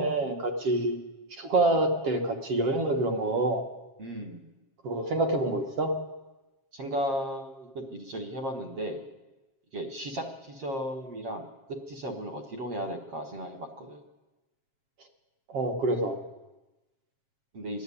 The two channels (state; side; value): late; left; 7.4 ms